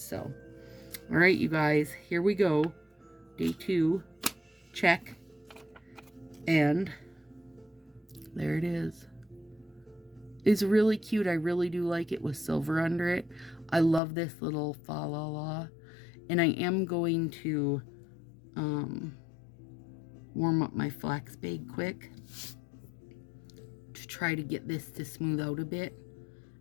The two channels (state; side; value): drops out; right; at 14.0 s